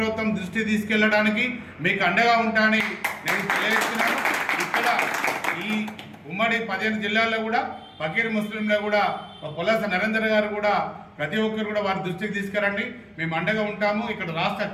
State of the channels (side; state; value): both; identical; correlation 1.00